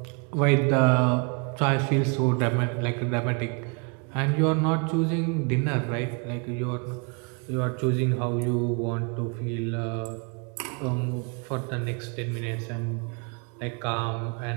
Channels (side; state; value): left; quieter; 35.4 dB